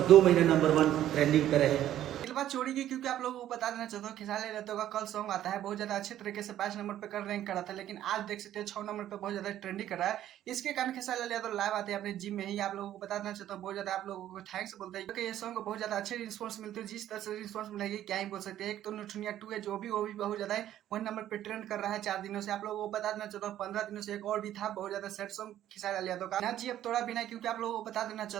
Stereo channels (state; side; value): quieter; left; 12.2 dB